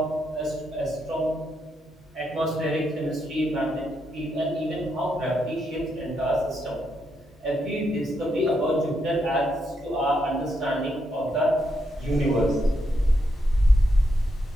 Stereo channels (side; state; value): both; normal; correlation 0.80